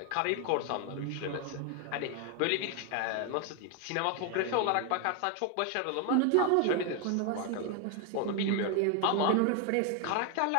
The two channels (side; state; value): both; different; correlation 0.01